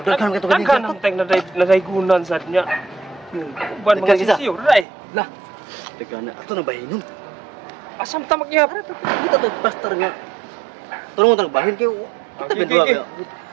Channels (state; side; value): drops out; left; at 4.9 s